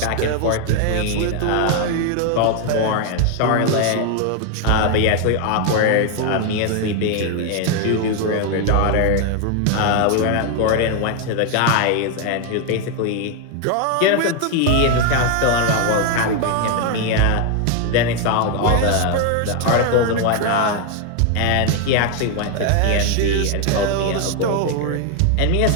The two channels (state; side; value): different; both; correlation 0.01